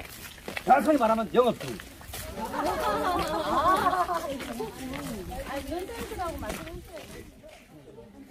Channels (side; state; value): both; identical; correlation 1.00